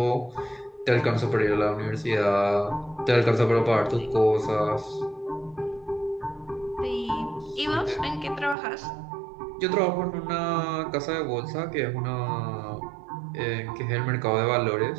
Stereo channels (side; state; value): left; drops out; at 8.6 s